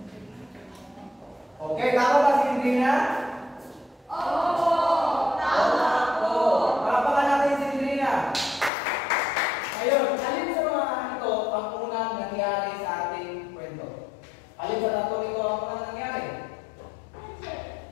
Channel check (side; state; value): right; drops out; at 8.7 s